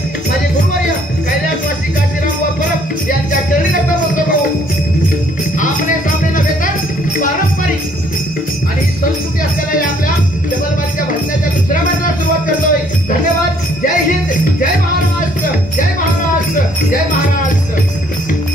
माझे गुरुवर्य कैलासवासी काशीराम व परब यांच्या चरणी नतमस्तक होऊन आमने सामने नव्हे तर पारंपरिक आणि संस्कृती असलेल्या या आपल्या जबलबारीच्या भजनाच्या दुसऱ्या मंडळाला सुरुवात करतोय। धन्यवाद। जय हिंद, जय महाराष्ट्र, जय महाराष्ट्र, जय महाराष्ट्र।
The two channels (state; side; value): normal; both; correlation 0.63